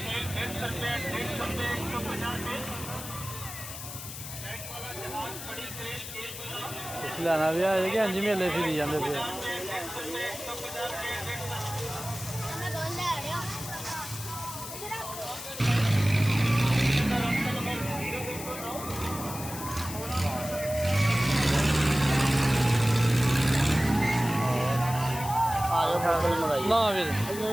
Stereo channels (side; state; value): left; noise; hiss, 10 dB below the sound